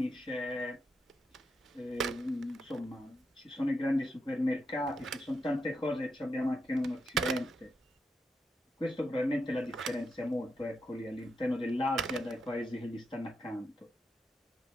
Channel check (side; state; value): both; normal; correlation 0.84